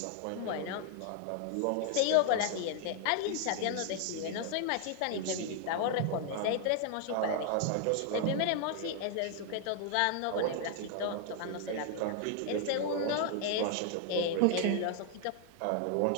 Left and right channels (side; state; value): both; different; correlation 0.00